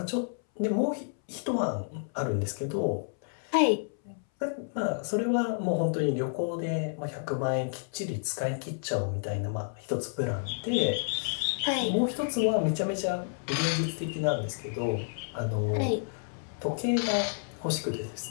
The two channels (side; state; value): right; silent; 58 dB below the other